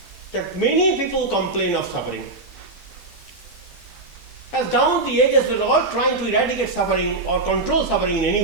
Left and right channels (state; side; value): quieter; left; 3.2 dB